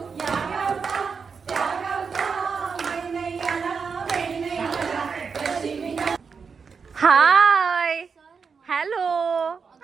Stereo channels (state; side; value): quieter; left; 5.6 dB